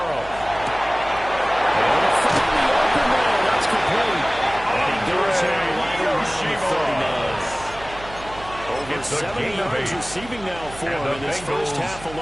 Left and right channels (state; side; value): noise; right; hum, 16 dB below the sound